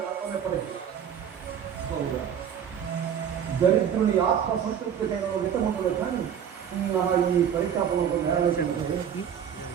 అర్థమెప్పటికీ దరిద్రుని ఆత్మ సంతృప్తికైన విటముండదు కానీ నా ఈ పరితాపంలో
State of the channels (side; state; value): left; quieter; 8.5 dB